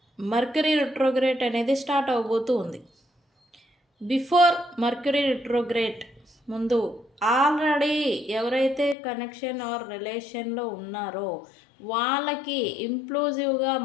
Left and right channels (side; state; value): right; drops out; at 9.0 s